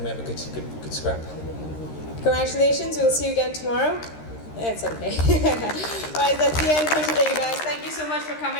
we have a good scrap. Congratulations. We'll see you again tomorrow. It's okay. All right, that's the end for today, guys. Thank you so much for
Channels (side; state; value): right; late; 13 ms